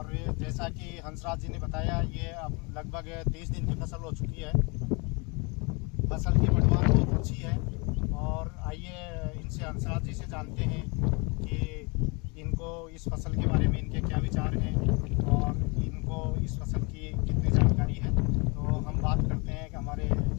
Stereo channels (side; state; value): right; quieter; 30.1 dB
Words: जैसा कि हंसराज जी ने बताया, ये अब लगभग 30 दिन की फसल हो चुकी है। फसल की बढ़वार बहुत अच्छी है। और आइए इनसे हंसराज जी से जानते हैं कि इनको इस फसल के बारे में इनके क्या विचार हैं और इनको इस फसल की कितनी जानकारी है। तो हम बात करते हैं कि हमारे